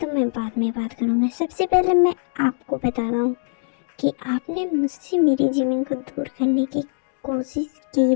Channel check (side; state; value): right; silent; digital silence